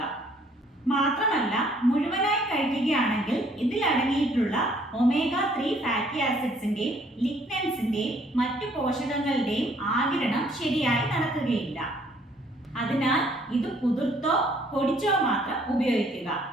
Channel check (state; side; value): normal; both; correlation 0.62